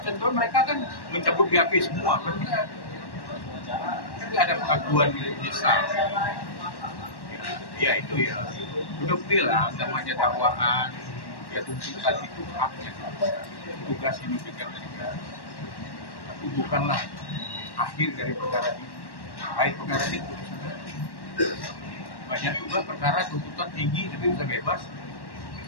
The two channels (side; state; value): right; late; 1.1 ms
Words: contoh mereka kan mencabut BAP semua, kan nggak ada pengakuan menyesal. Ya itu ya, udah bilang namanya dakwaan, ya tuntutan itu haknya, tugas ini diberikan oleh negara. Tapi bukanlah akhir dari perkara ini. Baik perkara ini putusan. Banyak juga perkara tuntutan tinggi tapi bisa bebas.